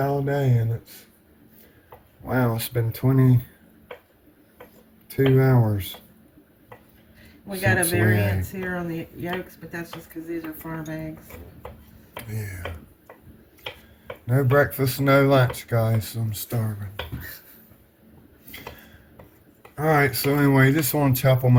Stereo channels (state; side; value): identical; both; correlation 1.00